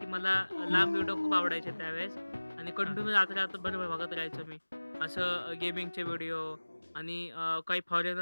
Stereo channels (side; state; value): both; inverted; correlation -1.00